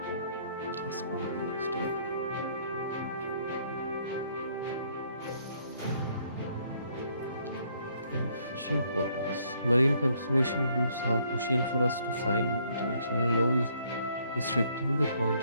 Let's go to the next step. Fishing quotas. Marine conservation groups are pushing for us to sign international laws restricting the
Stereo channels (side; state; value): both; inverted; correlation -0.67